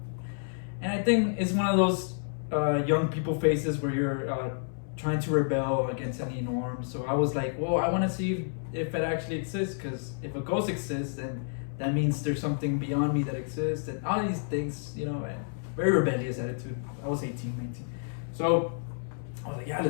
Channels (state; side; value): silent; right; 58 dB below the other